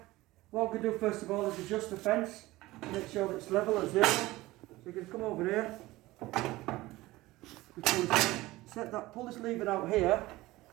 What we can do first of all is adjust the fence, make sure that it's level at 0. So you can come over here, pull this lever out here,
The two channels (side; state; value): left; quieter; 18.8 dB